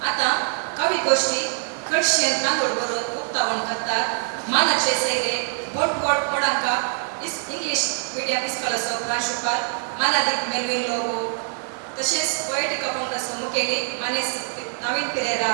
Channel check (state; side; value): silent; left; 63 dB below the other